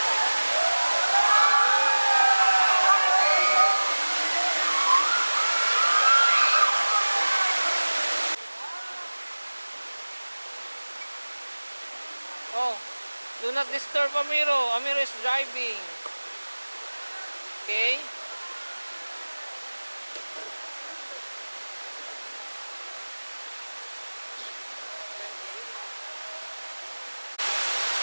Oh, do not disturb Amiro. Amiro is driving. Okay?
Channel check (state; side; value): inverted; both; correlation -1.00